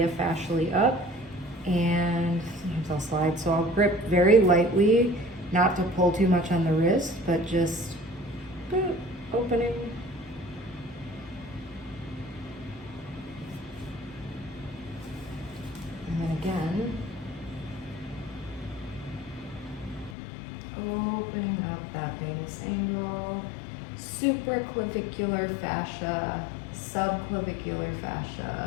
fascially up, and sometimes I'll slide. So I'll grip very lightly, not to pull too much on the wrist, but just opening. And then again, opening up that venous angle, supraclavicular fascia, subclavicular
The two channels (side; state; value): right; drops out; at 20.2 s